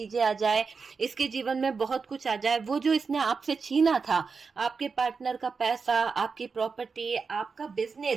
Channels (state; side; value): quieter; left; 5.0 dB